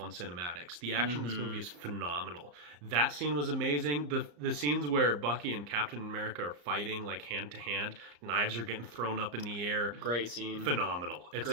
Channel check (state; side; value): late; left; 34 ms